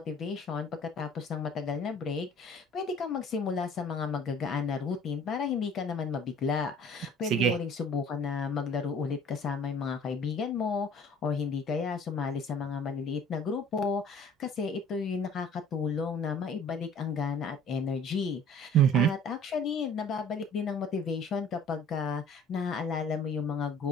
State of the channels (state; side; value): normal; both; correlation 0.50